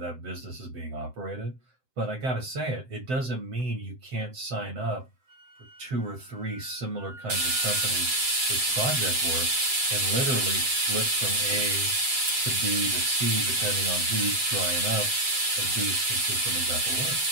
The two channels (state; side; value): late; left; 7.8 ms